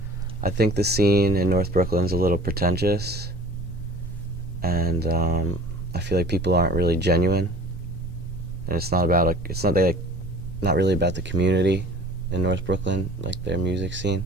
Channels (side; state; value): left; noise; rumble, 13 dB below the sound